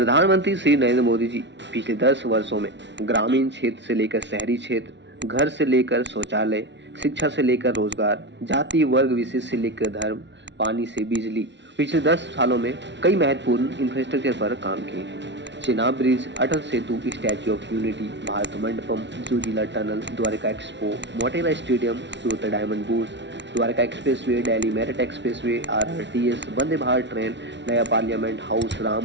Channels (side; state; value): left; late; 0.51 ms